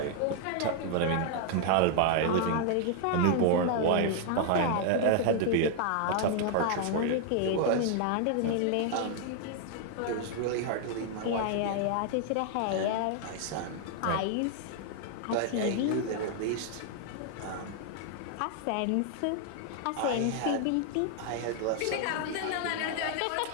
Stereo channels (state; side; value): different; both; correlation 0.00